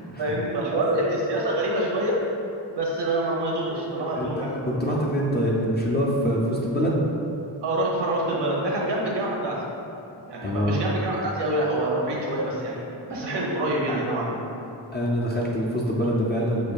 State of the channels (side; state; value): both; normal; correlation 0.19